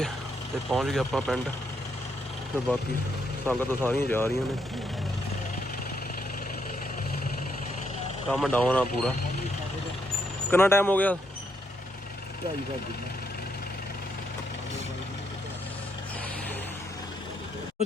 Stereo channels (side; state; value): both; normal; correlation 0.76